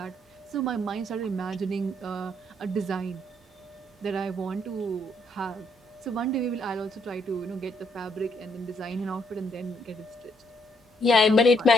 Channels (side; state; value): both; normal; correlation 0.72